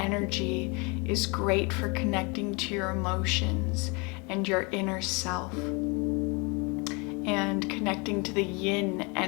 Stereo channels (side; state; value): right; quieter; 30.1 dB